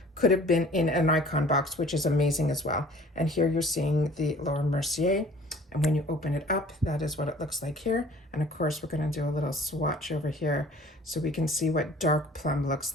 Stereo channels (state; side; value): normal; both; correlation 0.50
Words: could have been in an Icon box, which is amazing as well. And here you're seeing the Laura Mercier. And when you open it up, that is what it looks like here. And of course, we're going to do a little swatch over here so we can see what Dark Plum looks